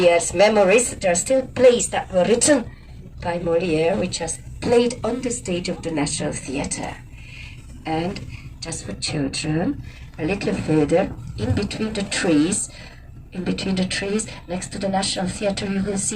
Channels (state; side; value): identical; both; correlation 1.00